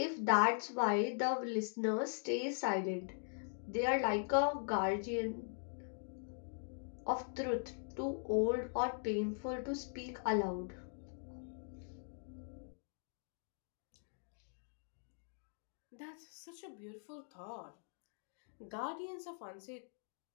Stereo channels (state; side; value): silent; right; digital silence